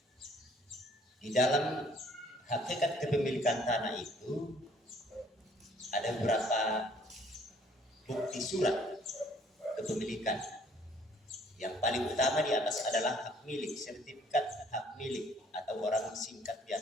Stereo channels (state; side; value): normal; both; correlation 0.60